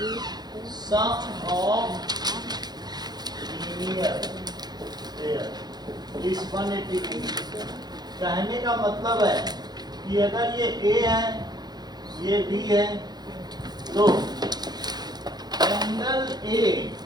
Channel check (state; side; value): late; left; 0.20 ms